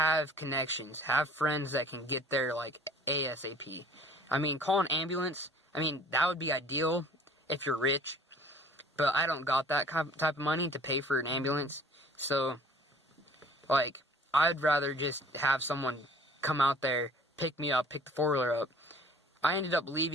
connections. Have friends that can get there, like, ASAP. I mean, call an ambulance. I mean, that would be ideal if you're rich. But I don't got that type of money to pay for an ambulance. So, like, I'd rather just have someone come out there, pick me up, pick the 4-wheeler up. I ended up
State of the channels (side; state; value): both; normal; correlation 0.51